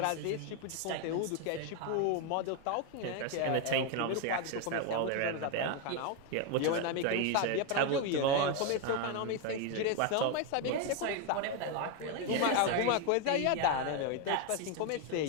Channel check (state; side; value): different; both; correlation 0.02